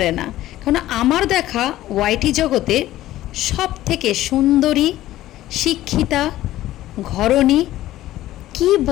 না। কারণ আমার দেখা ওয়াইটি জগতে সব থেকে সুন্দরী, শিক্ষিতা, ঘরণী, কি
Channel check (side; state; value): right; quieter; 14.8 dB